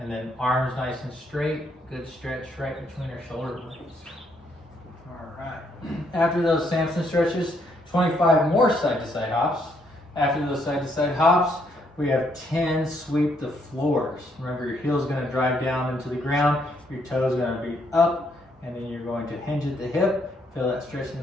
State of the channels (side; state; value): both; normal; correlation 0.72